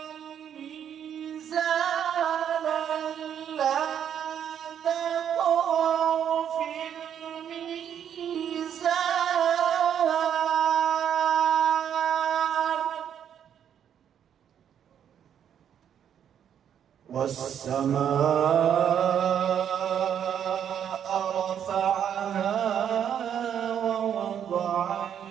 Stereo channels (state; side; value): quieter; left; 9.0 dB